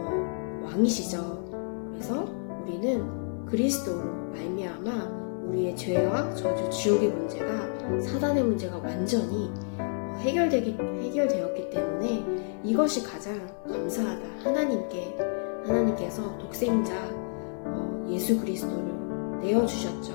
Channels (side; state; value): right; silent; 58 dB below the other